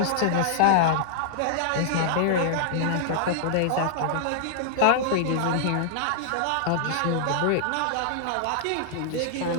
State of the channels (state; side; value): different; both; correlation -0.01